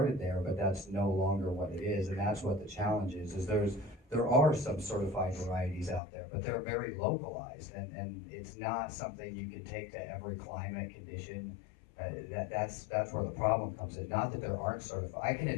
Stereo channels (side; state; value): right; drops out; at 6.0 s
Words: there, but that's no longer what it is, and that's what the challenge is there are some certified varieties out there, but they're very localized, and it's not something you can take to every climate condition. That's where the problem comes in. Not that there aren't certified. I can